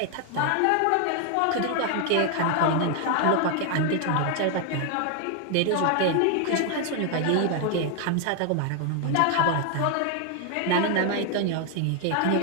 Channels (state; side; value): different; both; correlation 0.00